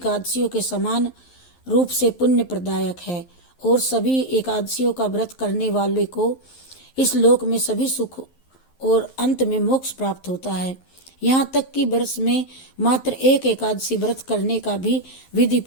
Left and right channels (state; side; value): late; right; 11 ms